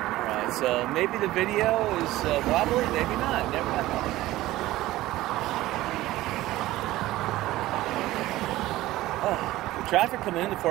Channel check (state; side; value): quieter; left; 16.6 dB